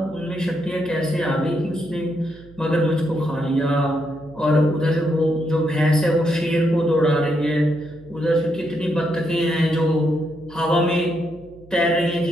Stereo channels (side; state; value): right; noise; hum, 23 dB below the sound